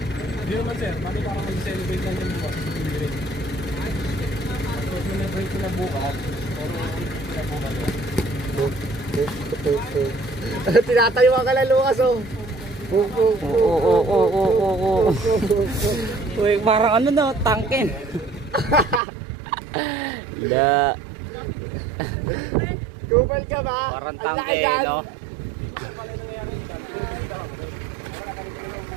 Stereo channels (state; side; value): drops out; left; at 19.0 s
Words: Hindi naman sir, mali para mag-celebrate lang yung bukas. Tapos celebrate ko na bukas, pero pinabukas ko. Tinatayo ka na, Lucas, oh. Oo. Uy, parang ano na, tangkin. Da. Kupal ka ba? Parang Ang tangke, laki yan. no?